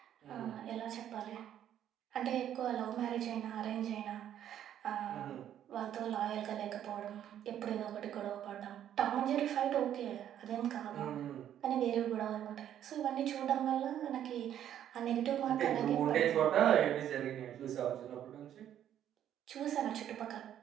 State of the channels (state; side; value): quieter; left; 10.6 dB